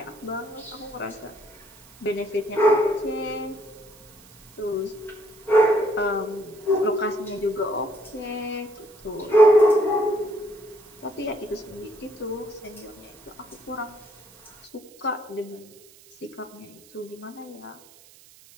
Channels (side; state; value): right; noise; hiss, 25 dB below the sound